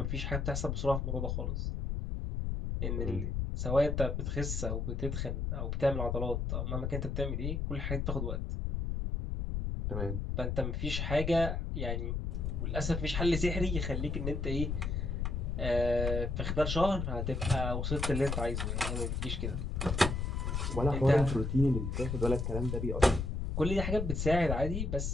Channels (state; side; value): noise; left; rumble, 1 dB below the sound